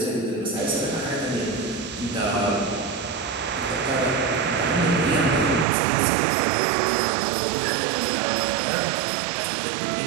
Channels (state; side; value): drops out; left; at 5.7 s